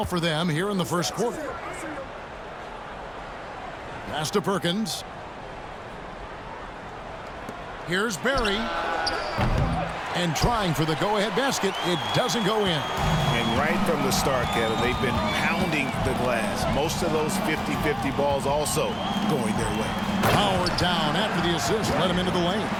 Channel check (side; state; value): both; identical; correlation 1.00